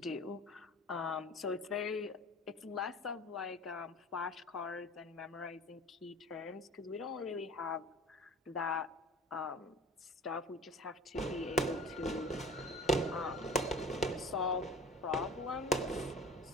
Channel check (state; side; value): normal; both; correlation 0.43